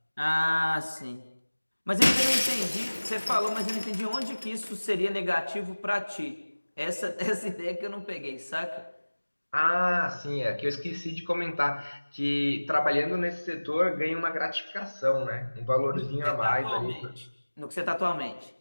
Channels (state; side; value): inverted; both; correlation -1.00